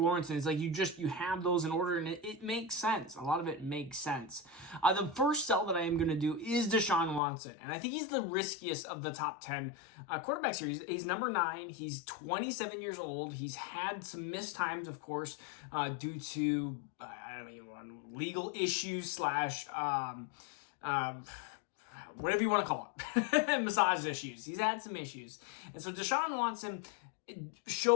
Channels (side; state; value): right; drops out; at 7.2 s